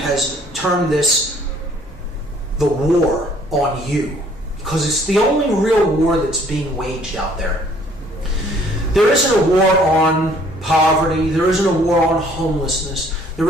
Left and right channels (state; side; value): normal; both; correlation 0.60